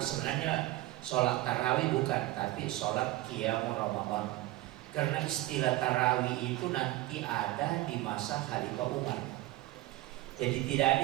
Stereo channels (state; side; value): quieter; left; 17.4 dB